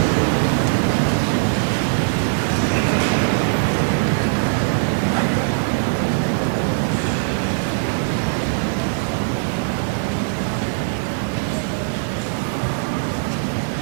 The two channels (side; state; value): left; silent; digital silence